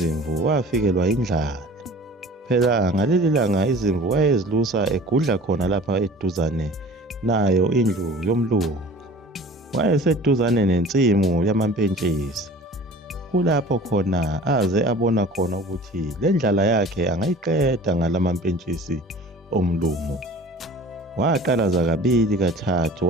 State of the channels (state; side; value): normal; both; correlation 0.44